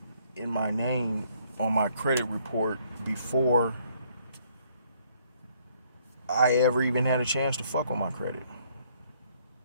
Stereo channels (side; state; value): both; inverted; correlation -0.65